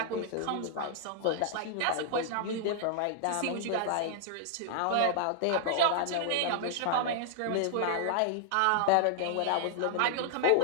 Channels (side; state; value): both; different; correlation -0.01